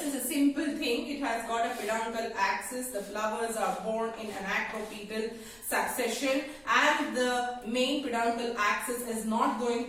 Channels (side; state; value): right; noise; rumble, 28 dB below the sound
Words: is a simple thing. It has got a peduncle axis. The flowers are born in an acropetal succession and the main peduncle axis is not